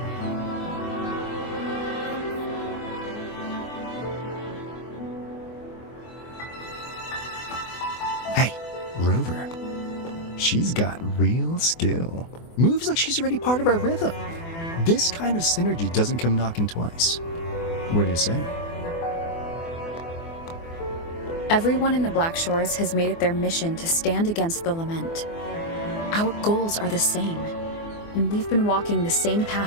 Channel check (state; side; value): late; right; 24 ms